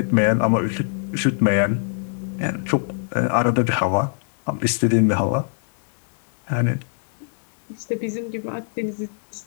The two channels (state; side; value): silent; right; 63 dB below the other